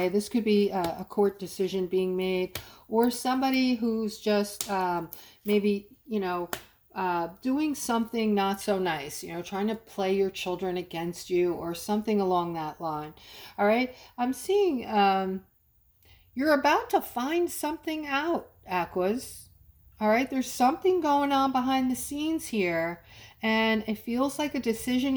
this could be a court decision being made, or somebody who's just maybe, you know, doing something not so nice, you know, trying to play your children against you or something along that line. All right, I'm seeing you're about to find something out, Aquas. All right, there's something going on behind the scenes here, and it feels like a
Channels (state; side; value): identical; both; correlation 1.00